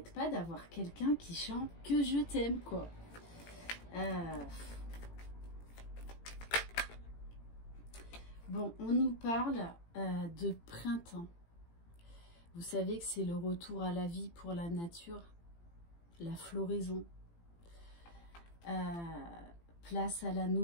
pas d'avoir quelqu'un qui chante Que je t'aime, quoi. Bon, on nous parle de printemps. Vous savez que c'est le retour à la vie pour la nature, la floraison. Place à la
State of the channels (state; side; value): late; right; 18 ms